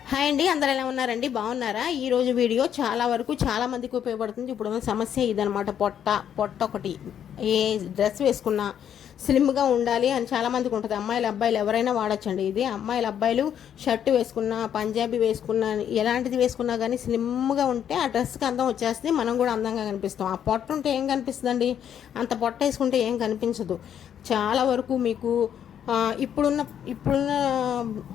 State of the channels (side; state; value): right; quieter; 9.3 dB